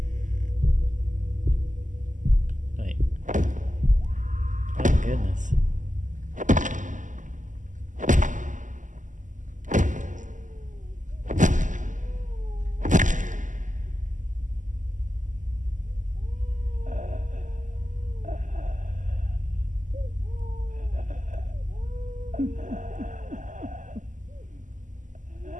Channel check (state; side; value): late; left; 0.37 ms